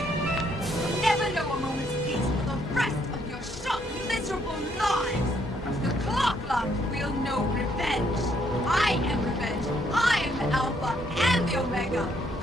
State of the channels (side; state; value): both; normal; correlation 0.70